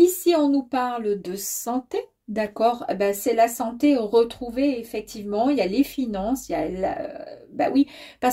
on nous parle de santé, d'accord? Ben, c'est la santé retrouvée, effectivement. Il y a les finances, il y a ben oui,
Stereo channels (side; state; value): both; identical; correlation 1.00